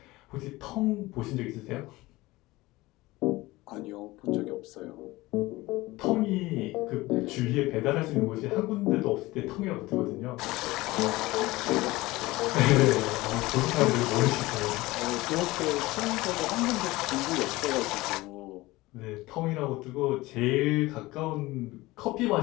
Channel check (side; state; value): right; quieter; 19.8 dB